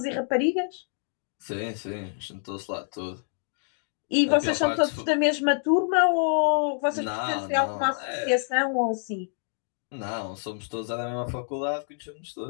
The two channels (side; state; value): right; silent; 60 dB below the other